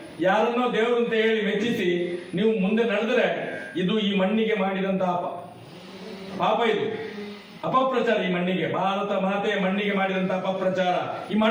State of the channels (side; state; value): both; identical; correlation 1.00